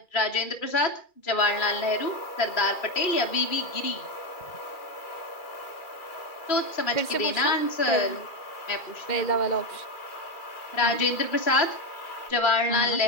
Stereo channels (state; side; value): late; right; 2.4 ms